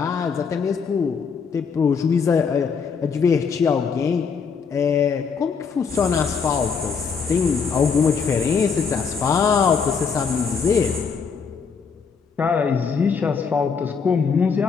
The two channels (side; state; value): right; quieter; 5.8 dB